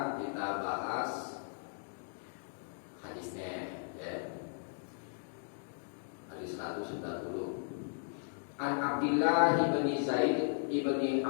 kita bahas hadisnya, ya. Hadis 190. An Abdillah bin Zaid ibni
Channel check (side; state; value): right; silent; digital silence